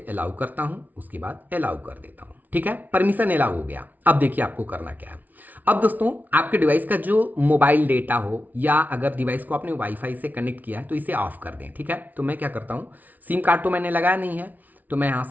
अलाउ करता हूं, उसके बाद अलाउ कर देता हूं। ठीक है, परमिशन अलाउ हो गया। अब देखिए आपको करना क्या है। अब दोस्तों आपके डिवाइस का जो मोबाइल डेटा हो, या अगर डिवाइस को आपने वाईफाई से कनेक्ट किया है, तो इसे ऑफ कर दें। ठीक है, तो मैं क्या करता हूं, सिम कार्ड तो मैंने लगाया नहीं है, तो मैं यहां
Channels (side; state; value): left; late; 0.079 ms